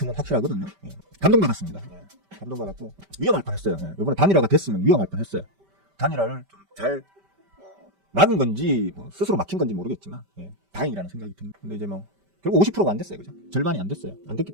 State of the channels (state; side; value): late; left; 5.1 ms